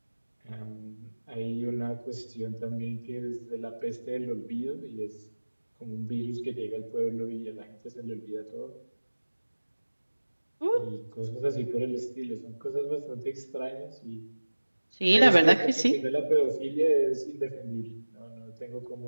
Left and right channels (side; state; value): both; inverted; correlation -1.00